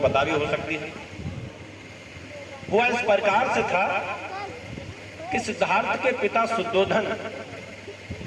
भी हो सकती है। हुआ इस प्रकार से था कि सिद्धार्थ के पिता शुद्धोधन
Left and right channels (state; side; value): identical; both; correlation 1.00